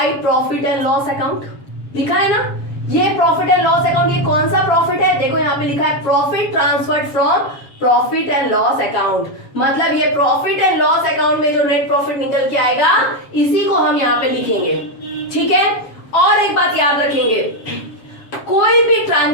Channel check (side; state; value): right; late; 7.2 ms